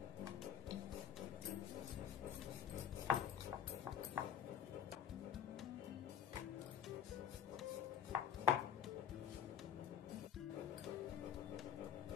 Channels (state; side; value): quieter; right; 8.7 dB